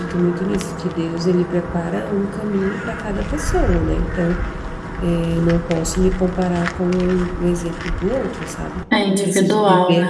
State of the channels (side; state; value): both; identical; correlation 1.00